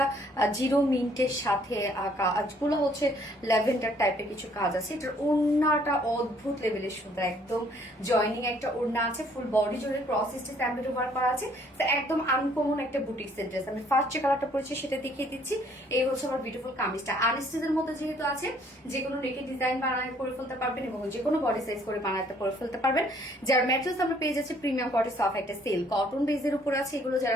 জিরো মিন্টের সাথে কাজগুলো হচ্ছে ল্যাভেন্ডার টাইপের কিছু কাজ আছে। এটার ওড়নাটা অদ্ভুত লেভেলের সুন্দর, একদম জয়নিং একটা ওড়না আছে, ফুল বডি জুড়ে ক্রস স্টিচ এমব্রয়ডারি ওয়ার্ক করা আছে। একদম আনকমন একটা বুটিক্সের ড্রেস। আমি ফার্স্ট যে কালারটা পরেছি সেটা দেখিয়ে দিচ্ছি। এই হচ্ছে আমার বিউটিফুল কামিজটা, আনস্টিচের মধ্যে যেহেতু আছে যে কোনো নেকের ডিজাইন বানায় করে ফেলতে পারবেন এবং যে কোনো বডি সাইজ করে বানাতে করে ফেলতে পারবেন। যার ম্যাটেরিয়ালস আমরা পেয়ে যাচ্ছি প্রিমিয়াম কোয়ালিটি সফট একটা সেল কটন বেসের উপর আছে। এগুলো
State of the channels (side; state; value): both; normal; correlation 0.62